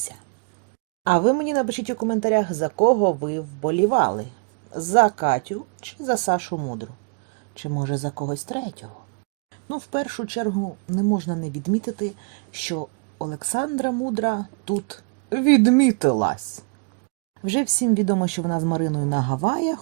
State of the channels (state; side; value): quieter; left; 36.6 dB